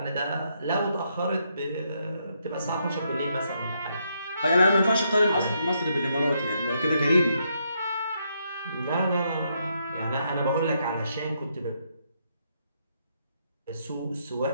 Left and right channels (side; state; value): both; inverted; correlation -0.77